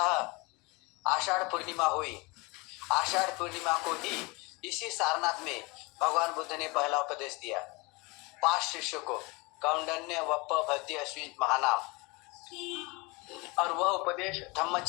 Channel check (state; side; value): quieter; right; 26.3 dB